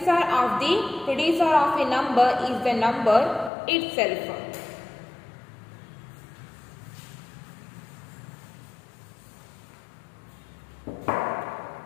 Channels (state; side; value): drops out; right; at 3.5 s